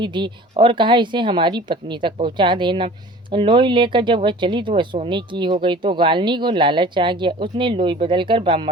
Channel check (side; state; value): both; normal; correlation 0.44